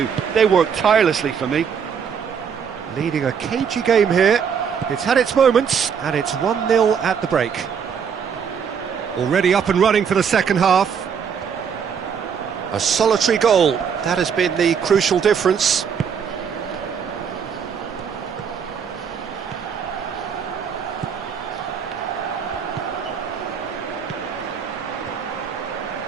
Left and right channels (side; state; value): left; quieter; 7.1 dB